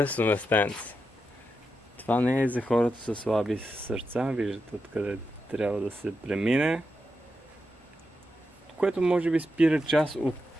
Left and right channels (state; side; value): normal; both; correlation 0.87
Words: местенце? Това не е за хората със слаби сърца, виждате откъде трябва да се премине. Което може би спира част от